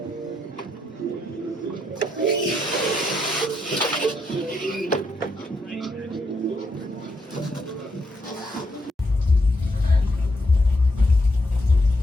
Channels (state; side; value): normal; both; correlation 0.78